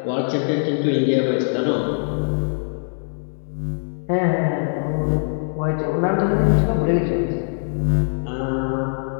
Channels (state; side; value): silent; right; 63 dB below the other